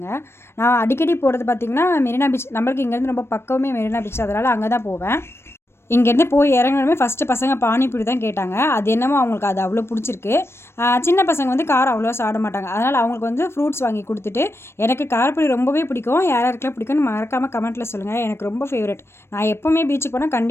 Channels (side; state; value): right; late; 0.12 ms